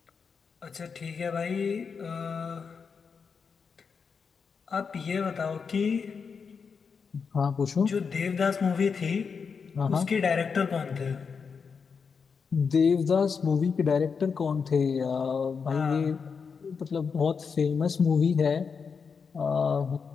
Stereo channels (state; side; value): quieter; right; 5.7 dB